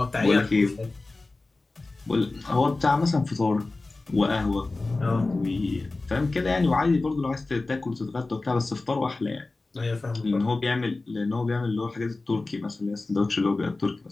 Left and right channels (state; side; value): quieter; right; 3.3 dB